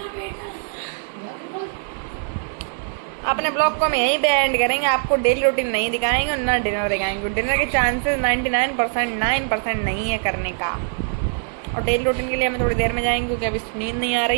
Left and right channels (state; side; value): silent; left; digital silence